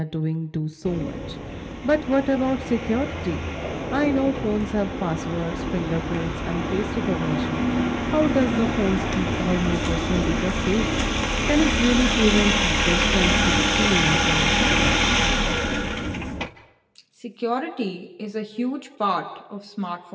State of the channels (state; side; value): identical; both; correlation 1.00